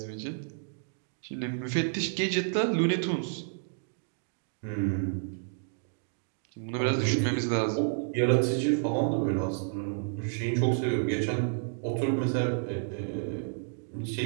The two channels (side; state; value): left; silent; digital silence